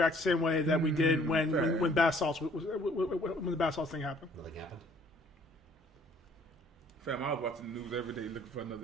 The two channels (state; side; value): normal; both; correlation 0.58